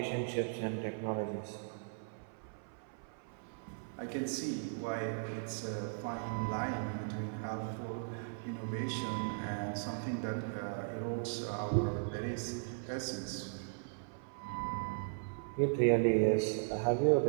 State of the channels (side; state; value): left; silent; 53 dB below the other